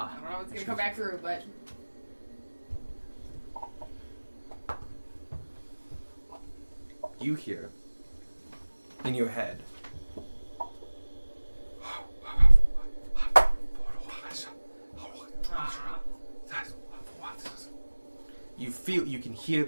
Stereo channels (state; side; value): inverted; both; correlation -1.00